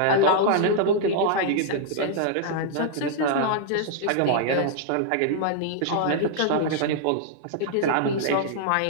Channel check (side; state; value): both; different; correlation -0.01